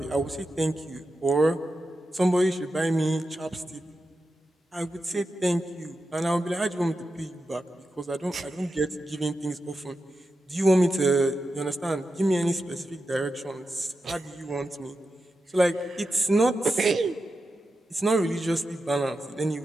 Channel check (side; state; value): both; normal; correlation 0.90